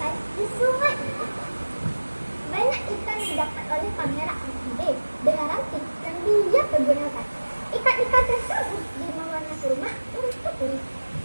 di sungai itu. Banyak ikan didapat oleh Pangeran Amakmaude dengan ranting yang dia pergunakan. Ikan-ikan tersebut dibawanya ke rumah untuk berenang.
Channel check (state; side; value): inverted; both; correlation -1.00